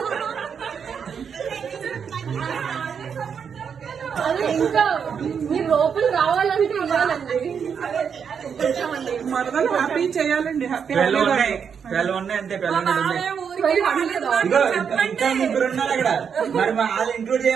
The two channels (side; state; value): left; quieter; 7.0 dB